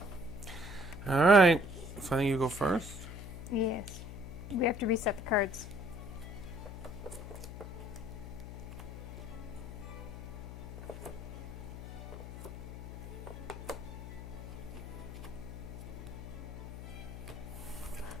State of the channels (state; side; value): noise; left; hum, 9 dB below the sound